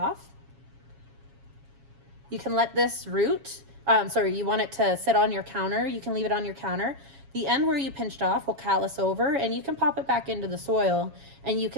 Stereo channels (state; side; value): late; left; 7.3 ms